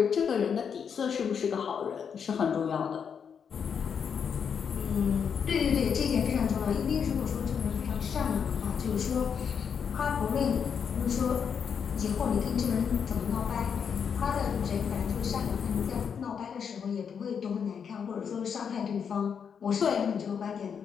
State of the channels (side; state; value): right; quieter; 7.0 dB